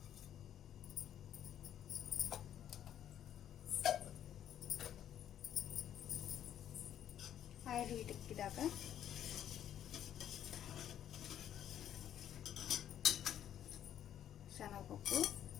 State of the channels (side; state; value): right; quieter; 10.5 dB